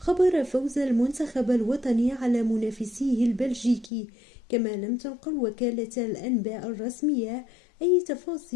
فوز المنتخب الوطني على منافسيه البلجيكي، كما لم تنقل وكالة الأنباء الرسمية أي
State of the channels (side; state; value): right; drops out; at 3.9 s